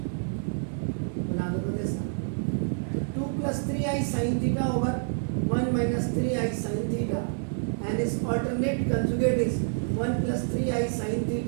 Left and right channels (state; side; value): silent; left; 59 dB below the other